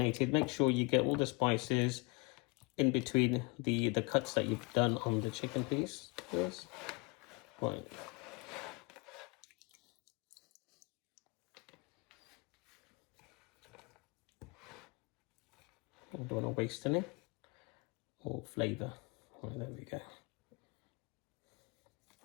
Make sure you get all the spices in between the cuts that you've done on the chicken piece. Yes. Right. I don't want to waste any or flavour. Right, there we go.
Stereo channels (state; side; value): quieter; right; 27.8 dB